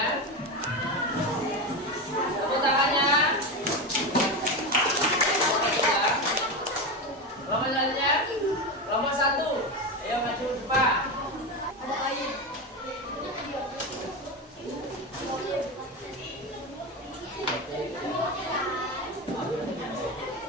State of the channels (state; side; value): normal; both; correlation 0.17